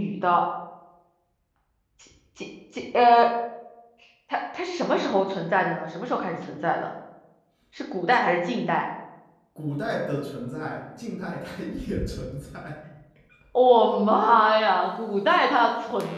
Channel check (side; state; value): both; identical; correlation 1.00